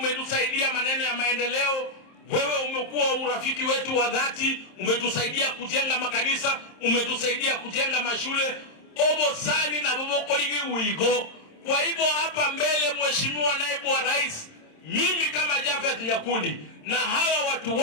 maneno ya maendeleo, wewe umekuwa urafiki wetu wa dhati, umetusaidia kujenga makanisa, umetusaidia kujenga mashule obo sani na bobo koligi uigo. Kwa hivyo hapa mbele, Mheshimiwa Naibu wa Rais, mimi kama Javeth Nyakundi na hawa watu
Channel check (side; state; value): right; late; 27 ms